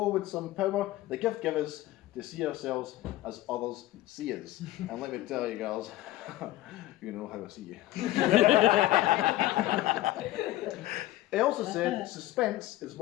with some power, the gift givers to see ourselves as others see us. And let me tell you, girls, you know how I see you. He also said, suspense is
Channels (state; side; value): quieter; right; 16.1 dB